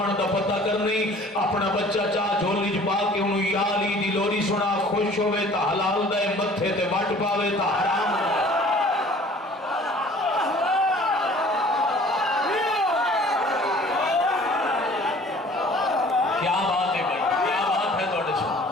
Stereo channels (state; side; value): normal; both; correlation 0.50